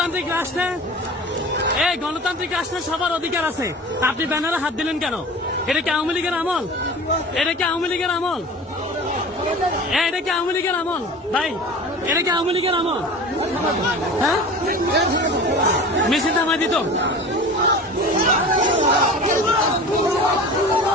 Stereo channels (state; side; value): normal; both; correlation 0.37